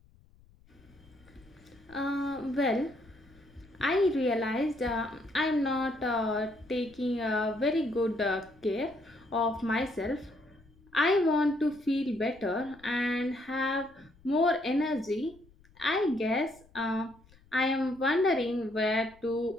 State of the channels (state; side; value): noise; left; rumble, 28 dB below the sound